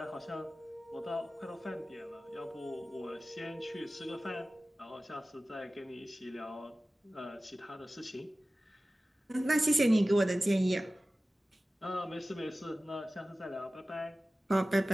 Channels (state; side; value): normal; both; correlation 0.97